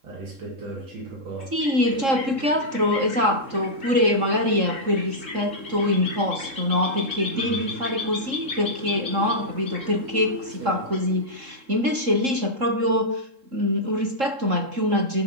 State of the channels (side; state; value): left; late; 3.7 ms